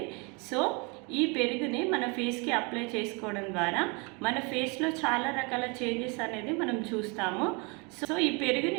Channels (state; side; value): quieter; left; 30.8 dB